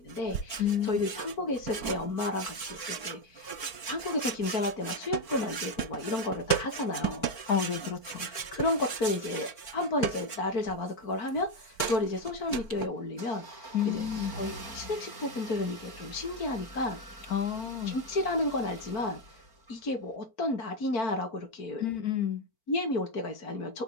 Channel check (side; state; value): right; late; 4.4 ms